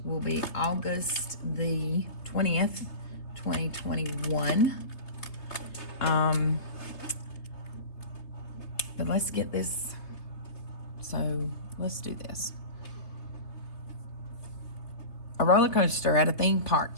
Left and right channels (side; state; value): right; late; 3.3 ms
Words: will be August the 20th, 2021. But let's get this. So let's do this. A roller coaster at a theme park